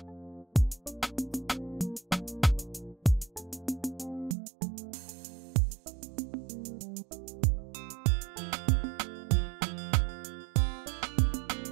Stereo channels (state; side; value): drops out; left; at 4.4 s